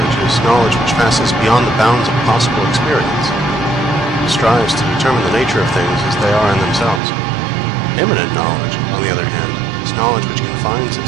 is knowledge which passes beyond the bounds of possible experience. It strives to determine the nature of things as they are in themselves. Immanent knowledge, on the other hand, is knowledge which confines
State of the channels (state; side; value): drops out; left; at 7.0 s